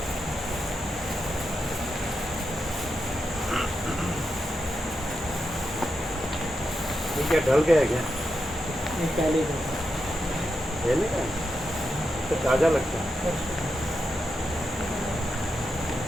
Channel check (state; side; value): normal; both; correlation 0.86